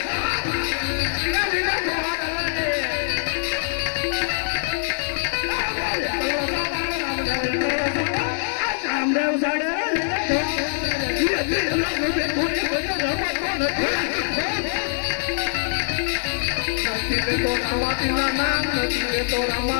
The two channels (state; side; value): silent; right; digital silence